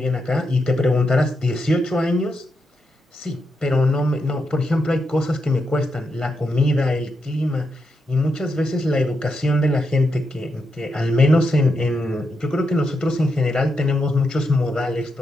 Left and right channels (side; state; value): both; normal; correlation 0.84